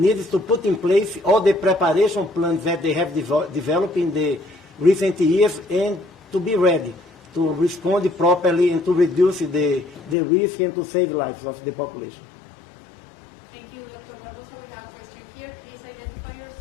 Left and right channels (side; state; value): right; drops out; at 10.2 s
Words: to put in place all the preparation plans that they have developed in the recent years, and to be ready to respond properly and to reduce the risk and to save lives of the population. Thank you, Dr. Barbosa. We have a question here. Please identify